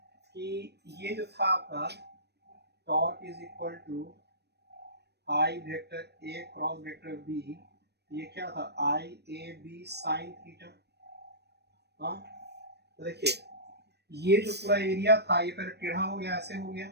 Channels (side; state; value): left; late; 0.48 ms